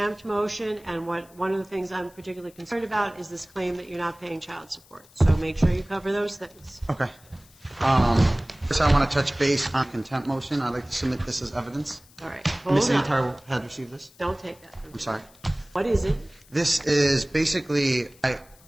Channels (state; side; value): noise; left; hiss, 26 dB below the sound